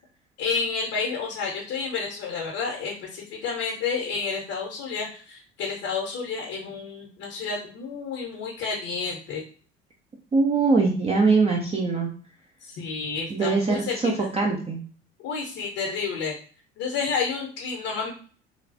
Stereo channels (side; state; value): both; normal; correlation 0.40